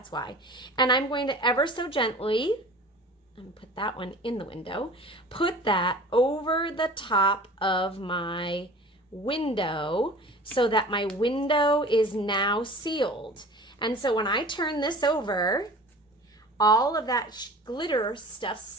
why. And I'm going to ever so gently, I'm gonna put that one in the window, put that over the top of my window so that my window is now sealed. And so when I turn this over, all of that glitter stuff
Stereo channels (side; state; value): both; normal; correlation 0.41